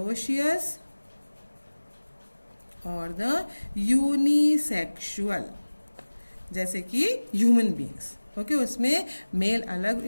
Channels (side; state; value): both; inverted; correlation -1.00